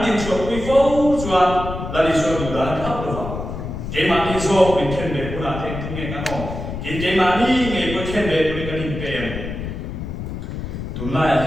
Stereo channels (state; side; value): noise; left; rumble, 7 dB below the sound